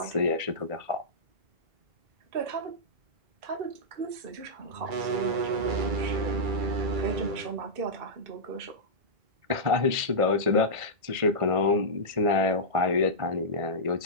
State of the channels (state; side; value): late; left; 1.5 ms